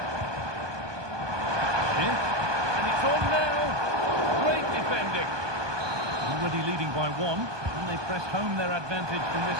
Already leading by one, and they press home their advantage from this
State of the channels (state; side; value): late; left; 1.2 ms